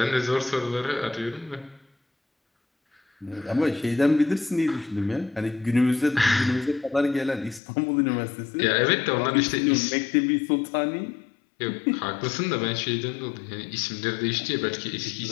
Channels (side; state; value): right; drops out; at 7.6 s